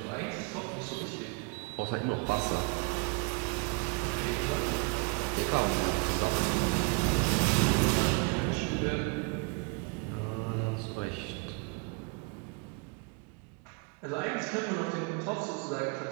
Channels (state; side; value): quieter; left; 30.7 dB